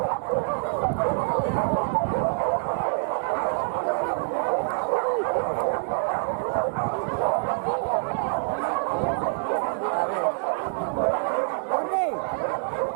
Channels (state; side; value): silent; left; 61 dB below the other